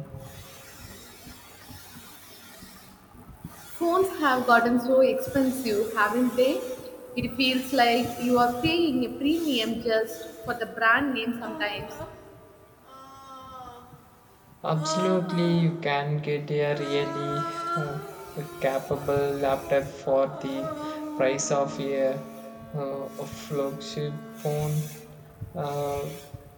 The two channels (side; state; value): both; identical; correlation 1.00